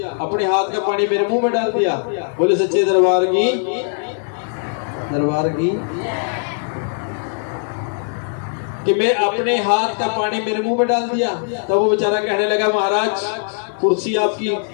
अपने हाथ का पानी मेरे मुंह में डाल दिया। बोले सच्चे दरबार की। कि मैं अपने हाथ का पानी मेरे मुंह में डाल दिया। तब वो बेचारा कहने लगा महाराज कुर्सी आपकी,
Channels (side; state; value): right; silent; digital silence